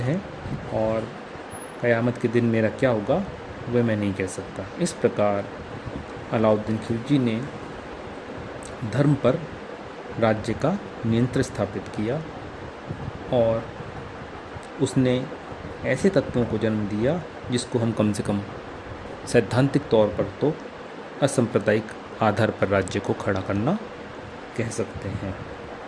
और क़यामत के दिन मेरा क्या होगा वह मैं नहीं कह सकता। इस प्रकार अलाउद्दीन खिलजी ने धर्म पर राज्य का नियंत्रण स्थापित किया और उसने ऐसे तत्वों को जन्म दिया जिसको हम कम से कम सैद्धांतिक तौर पर तो असंप्रदायिक आधार पर राज्य को खड़ा करना कह सकते हैं।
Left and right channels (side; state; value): both; identical; correlation 1.00